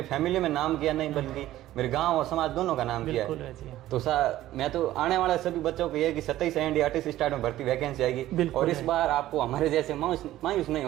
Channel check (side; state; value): left; quieter; 14.5 dB